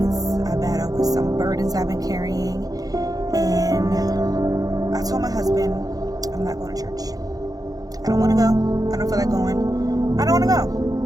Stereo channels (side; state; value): left; late; 0.18 ms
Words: I battled with some burdens I've been carrying, and I told my husband, I'm not going to church. I don't want to go. I don't feel like going. I don't want to